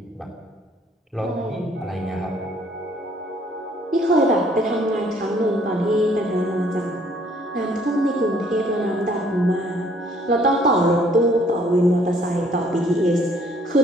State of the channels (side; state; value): both; normal; correlation 0.62